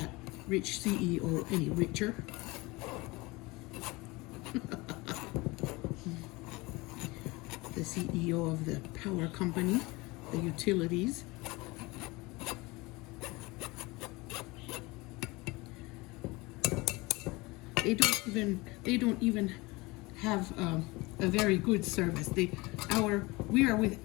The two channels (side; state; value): right; quieter; 23.3 dB